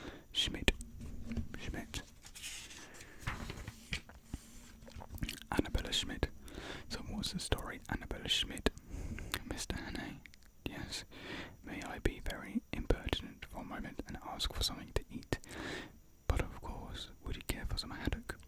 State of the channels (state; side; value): identical; both; correlation 1.00